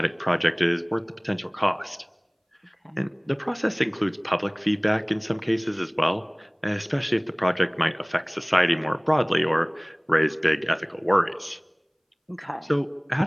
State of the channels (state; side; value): identical; both; correlation 1.00